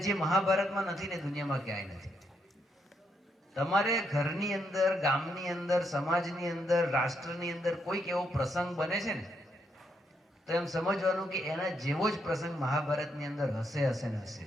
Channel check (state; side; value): normal; both; correlation 0.78